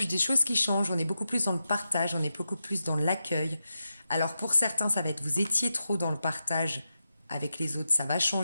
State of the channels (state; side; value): inverted; both; correlation -0.89